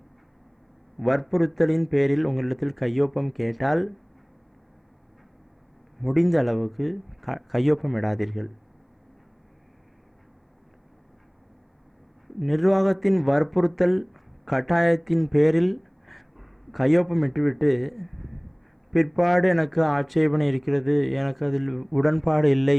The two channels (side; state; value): both; identical; correlation 1.00